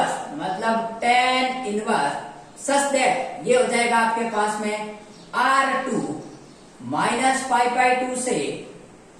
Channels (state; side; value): identical; both; correlation 1.00